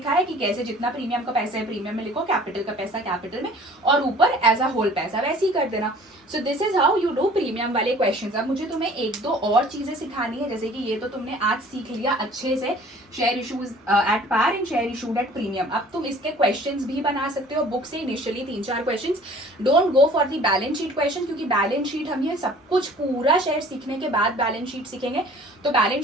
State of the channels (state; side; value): normal; both; correlation 0.50